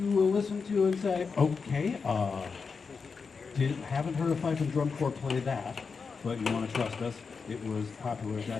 will listen to and say, okay, haven't heard a fife and drum corps play that, but you want to trust us, it was popular at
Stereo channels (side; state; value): right; quieter; 5.2 dB